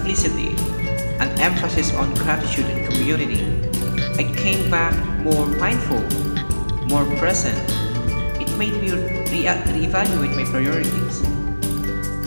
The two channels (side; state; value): both; inverted; correlation -1.00